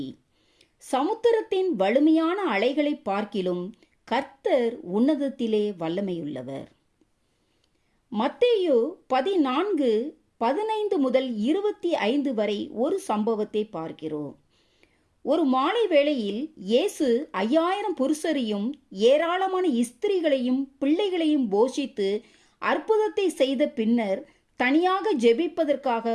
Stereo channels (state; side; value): identical; both; correlation 1.00